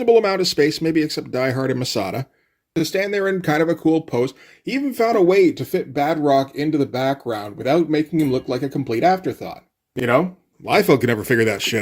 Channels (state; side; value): identical; both; correlation 1.00